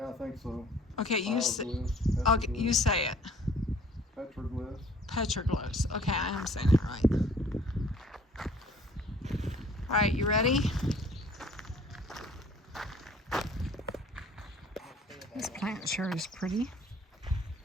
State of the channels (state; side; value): normal; both; correlation 0.54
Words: I think so. Okay, you say it. Petroglyphs. Petroglyphs. Okay, I am saying it right. All right, you ready? This plant sure is pretty.